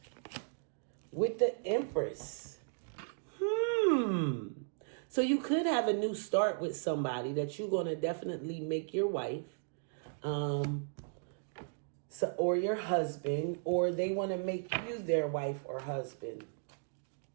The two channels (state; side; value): silent; left; digital silence